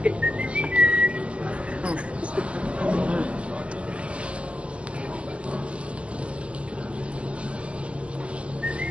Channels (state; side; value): late; left; 0.057 ms